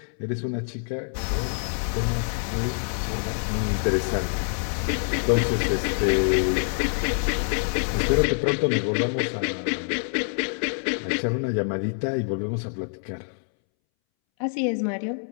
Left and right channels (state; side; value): silent; right; 61 dB below the other